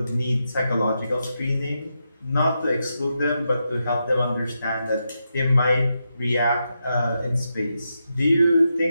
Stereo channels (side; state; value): both; inverted; correlation -0.85